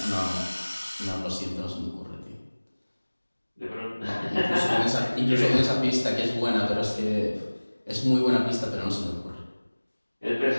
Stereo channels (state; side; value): inverted; both; correlation -1.00